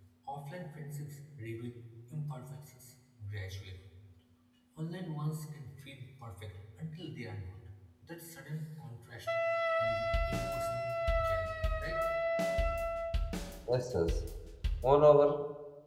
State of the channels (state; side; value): identical; both; correlation 1.00